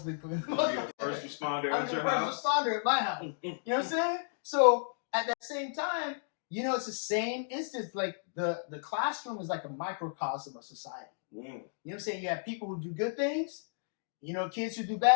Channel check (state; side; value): silent; right; digital silence